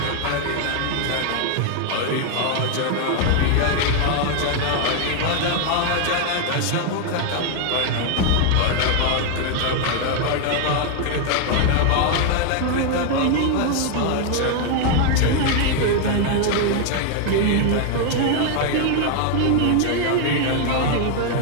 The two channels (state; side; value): different; both; correlation 0.00